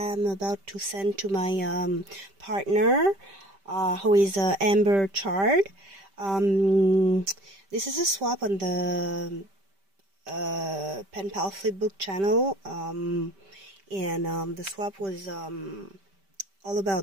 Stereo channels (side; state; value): left; late; 5.1 ms